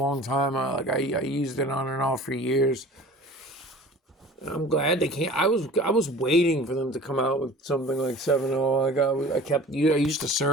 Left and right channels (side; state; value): both; normal; correlation 0.43